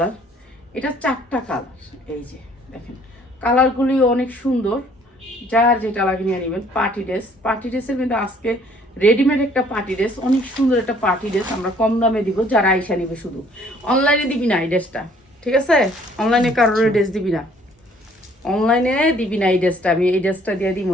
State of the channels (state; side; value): normal; both; correlation 0.59